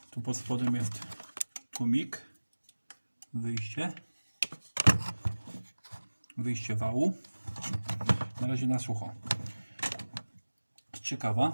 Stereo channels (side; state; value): both; inverted; correlation -1.00